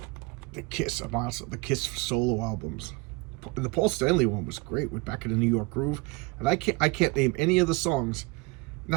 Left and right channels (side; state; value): left; quieter; 25.4 dB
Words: The Kiss, a monster. The Kiss solo albums. The Paul Stanley one was great with Back in the New York Groove. And I can't name any of the songs.